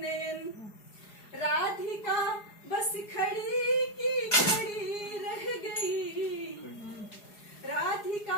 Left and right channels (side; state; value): right; late; 4.8 ms